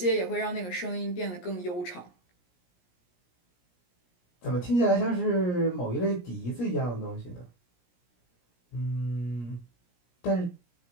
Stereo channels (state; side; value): late; right; 17 ms